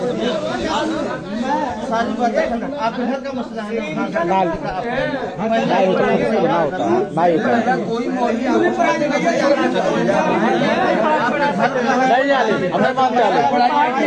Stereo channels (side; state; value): both; identical; correlation 1.00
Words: सारी बातें आपके घर का मसला है